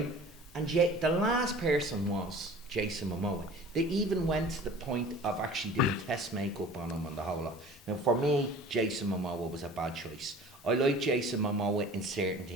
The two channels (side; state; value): both; normal; correlation 0.44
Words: And the last person was Jason Momoa. They even went to the point of actually doing test makeup on him and the whole lot. Now, for me, Jason Momoa was a bad choice. I like Jason Momoa in certain